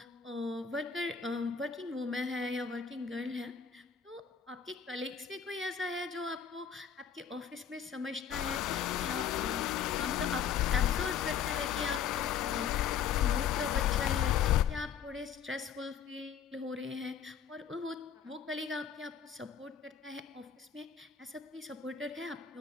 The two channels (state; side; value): quieter; right; 7.7 dB